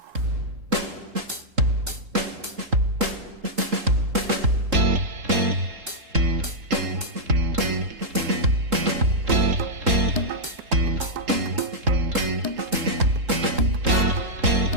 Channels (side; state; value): left; late; 3.7 ms